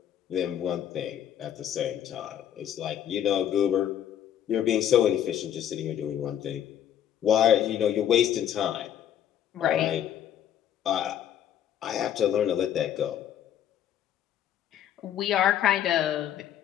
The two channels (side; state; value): right; quieter; 10.2 dB